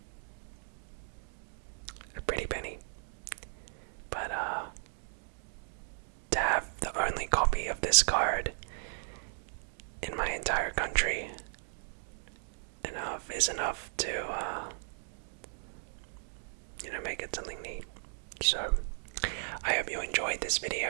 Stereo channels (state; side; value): silent; left; digital silence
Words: a pretty penny. But, to have the only copy of this card in my entire country is enough to, make it something neat. So, I hope you enjoyed this